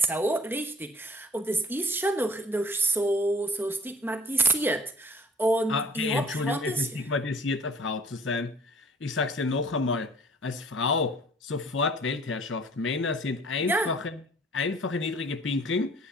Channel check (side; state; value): both; normal; correlation 0.53